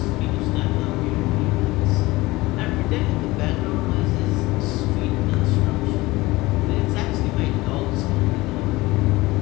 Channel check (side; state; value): right; quieter; 20.4 dB